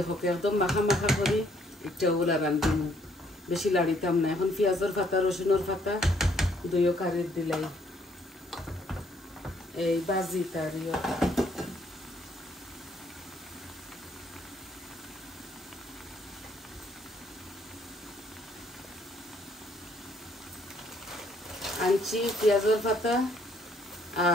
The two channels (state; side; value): normal; both; correlation 0.66